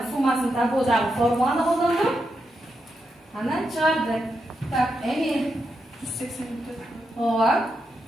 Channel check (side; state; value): both; normal; correlation 0.85